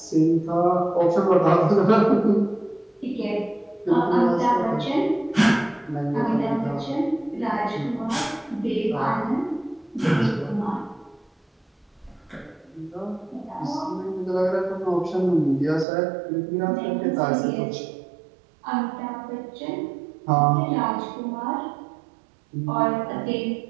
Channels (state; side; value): drops out; left; at 15.9 s